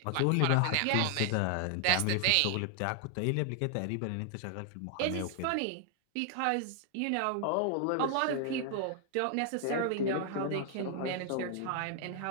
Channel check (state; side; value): different; both; correlation 0.00